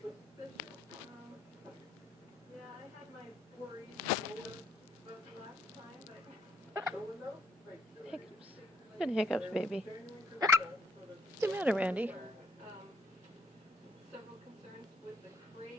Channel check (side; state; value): both; normal; correlation 0.70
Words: Yeah, I had my worries about the last time, but... Hiccups. Good hiccups, baby. What's the matter, Randy? Several concerns with the